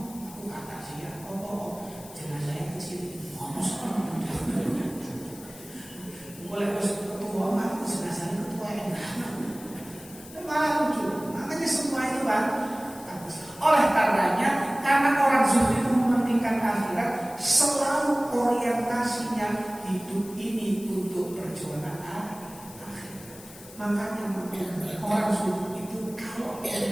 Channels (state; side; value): noise; left; hiss, 18 dB below the sound